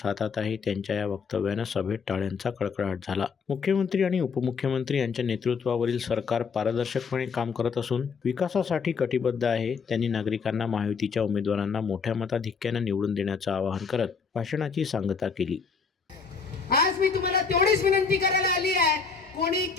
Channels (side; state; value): right; quieter; 5.5 dB